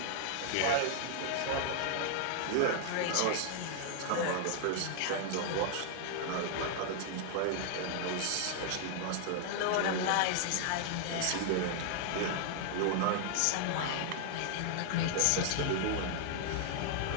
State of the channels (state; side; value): different; both; correlation 0.00